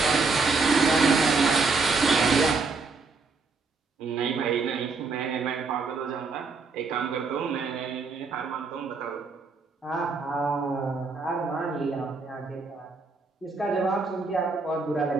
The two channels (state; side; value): quieter; left; 4.3 dB